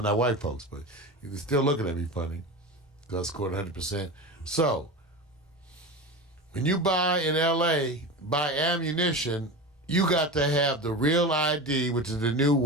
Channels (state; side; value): normal; both; correlation 0.26